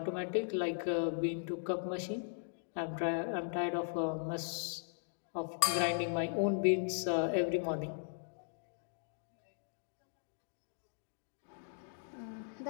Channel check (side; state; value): right; silent; digital silence